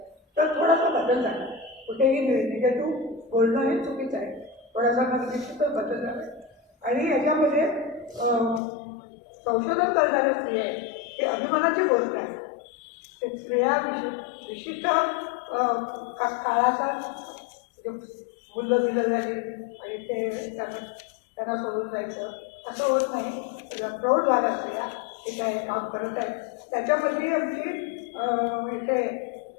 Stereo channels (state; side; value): drops out; right; at 8.6 s